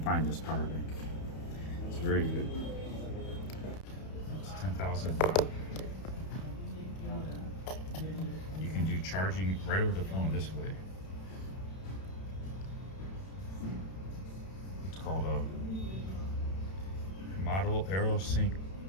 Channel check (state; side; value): late; right; 31 ms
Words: this power bank. It's very good. It's 10,000 baht. You can do charging right over the phone this way. It's called a Model AeroSync